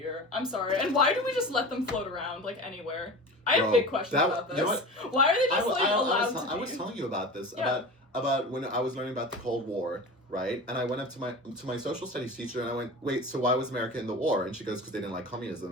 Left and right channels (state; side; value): normal; both; correlation 0.32